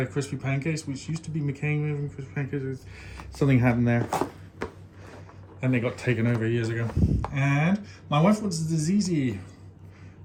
crispy pancakes, which used to be McCain moving crispy pancakes. Something happened there, and they got taken over years ago. And my wife wants this easy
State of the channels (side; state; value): both; identical; correlation 1.00